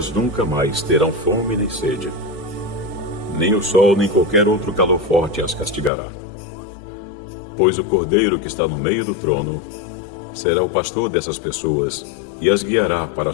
nunca mais terão fome nem sede. Nem o sol nem qualquer outro calor forte as castigará. Pois o Cordeiro que está no meio do trono será o pastor dessas pessoas e as guiará para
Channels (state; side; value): drops out; right; at 5.9 s